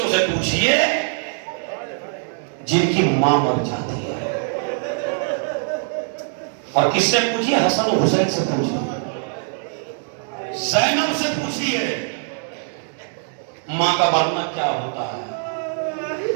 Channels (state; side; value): silent; left; 64 dB below the other